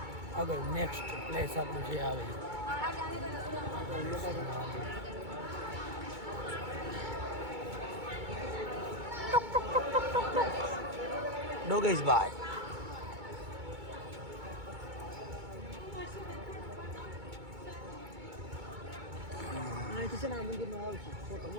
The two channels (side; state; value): left; late; 2.2 ms